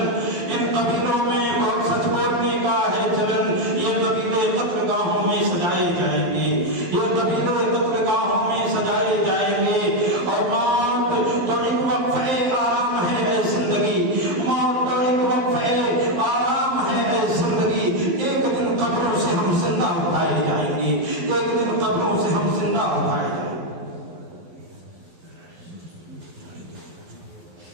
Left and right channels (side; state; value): left; late; 12 ms